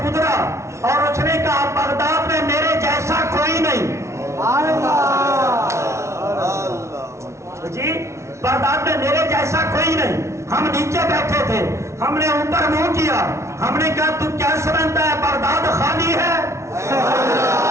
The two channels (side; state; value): left; late; 0.13 ms